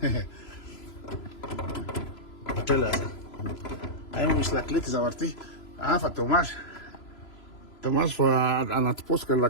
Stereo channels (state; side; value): late; right; 3.0 ms